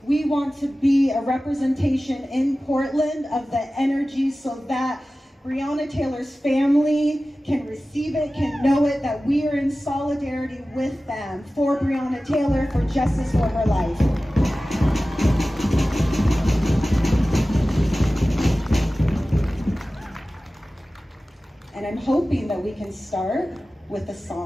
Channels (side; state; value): both; normal; correlation 0.96